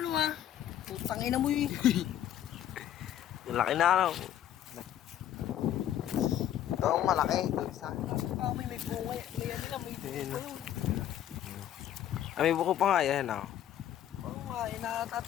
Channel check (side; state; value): right; quieter; 11.3 dB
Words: ano ha. Putang ina mo eh. Yung laki na ano. Ito ang malaki. Ito isa. May bunga. May ano na, may bunga pa yun. May buko pa nga yan ah. Oo nga,